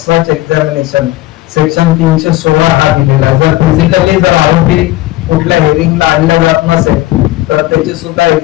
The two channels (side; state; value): right; quieter; 17.4 dB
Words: such examination section 316 हा दिलेला. जर फिजिकली जर आरोपी कुठल्या हिअरिंगला आणला जात नसेल तर त्याची सुद्धा